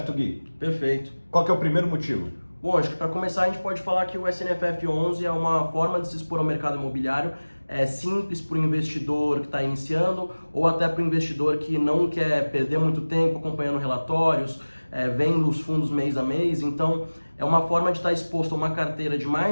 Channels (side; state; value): both; inverted; correlation -1.00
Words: Gui? Perfeito. Qual que é o primeiro motivo? Bom, acho que para começar a gente pode falar que o SNFF 11 é uma forma de se expor ao mercado imobiliário simples para o investidor que está iniciando ou até para o investidor que não quer perder muito tempo acompanhando relatórios, vendo os fundos mês a mês. Então, é uma forma de estar exposto a uma carteira de